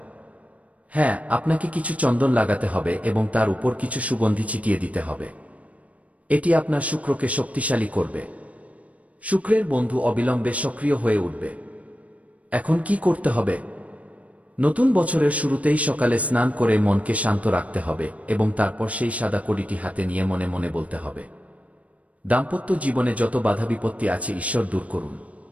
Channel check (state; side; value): late; left; 0.067 ms